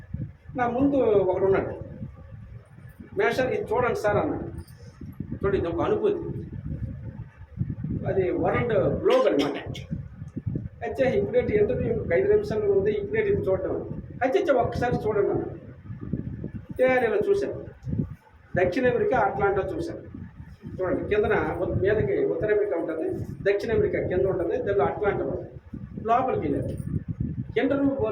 నా ముందు ఒకడు ఉన్నాడు, మేషర్ ఇది చూడండి సార్ అన్నాడు. చూడండి, ఇది ఒక అనుభూతి. అది వరల్డ్ గ్లోబ్ అనమాట. అయితే ఇప్పుడేంటి ఇంటర్వ్యూ 5 నిమిషాలు ఉంది, ఇప్పుడేంటి ఇది చూడడం అయితే ఒక్కసారి చూడండి అన్న. నేను ఇలా చూశాను, దక్షిణ అమెరికా అట్లాంటా చూశాను. చూడండి కిందన మీదకి ఉత్తర అమెరికా ఉంటుంది, దక్షిణ అమెరికా కింద ఉంటుంది, దానిలో అట్లాంటా ఉంటుంది. లోపలికి వెళ్ళారు, ఇంటర్వ్యూ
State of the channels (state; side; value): identical; both; correlation 1.00